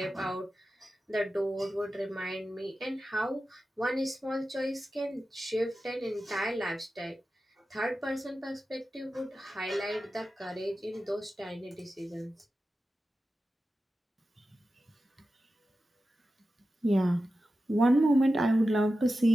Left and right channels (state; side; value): normal; both; correlation 0.93